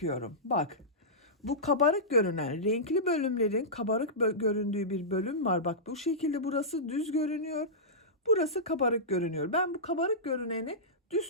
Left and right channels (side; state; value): both; normal; correlation -0.15